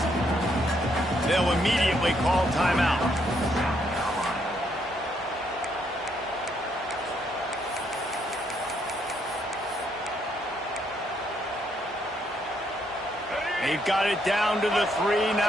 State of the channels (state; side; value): normal; both; correlation 0.73